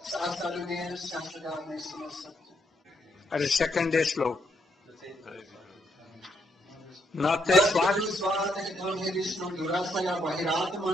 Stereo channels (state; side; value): normal; both; correlation 0.76